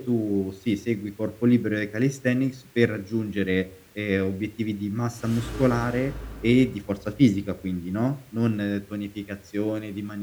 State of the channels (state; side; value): identical; both; correlation 1.00